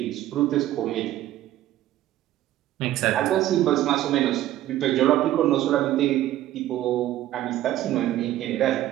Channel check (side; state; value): left; quieter; 13.8 dB